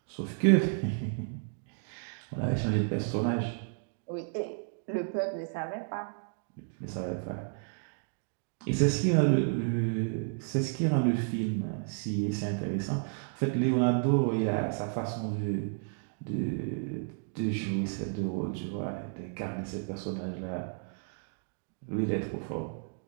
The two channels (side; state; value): left; silent; 56 dB below the other